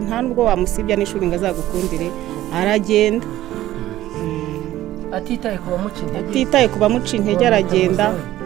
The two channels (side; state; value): left; quieter; 14.4 dB